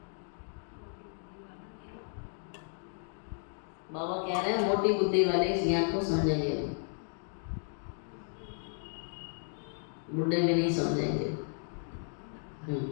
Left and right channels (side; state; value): right; silent; 55 dB below the other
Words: बाबा कह रहे हैं मोटी बुद्धि वाले इस ज्ञान को समझेंगे, बुढ़े भी नहीं समझेंगे।